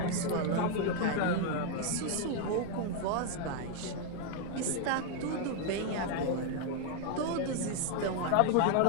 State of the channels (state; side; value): different; both; correlation 0.01